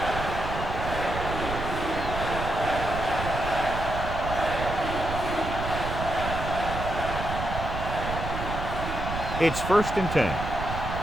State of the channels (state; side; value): noise; right; rumble, 5 dB below the sound